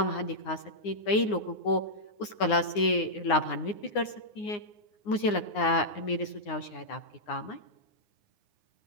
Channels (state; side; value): late; right; 9.7 ms